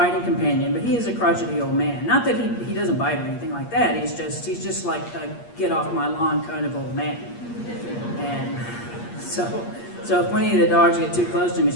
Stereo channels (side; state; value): right; late; 8.5 ms